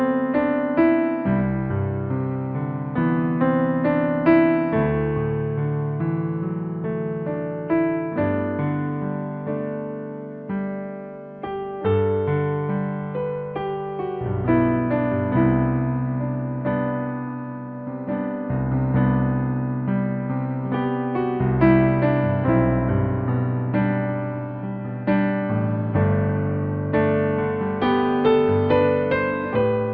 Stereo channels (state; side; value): identical; both; correlation 1.00